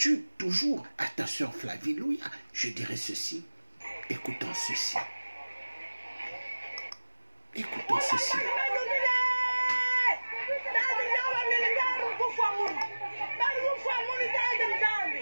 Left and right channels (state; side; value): inverted; both; correlation -1.00